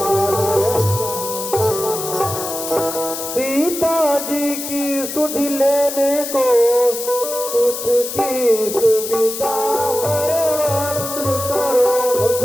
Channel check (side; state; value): left; noise; hiss, 6 dB below the sound